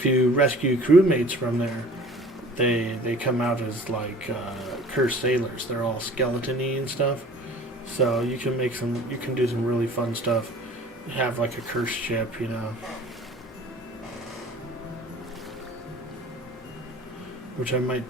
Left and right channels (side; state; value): both; normal; correlation 0.47